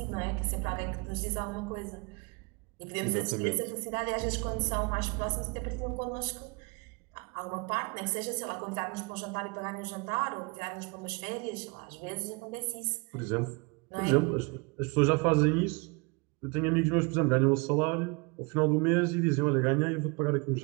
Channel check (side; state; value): left; quieter; 30.1 dB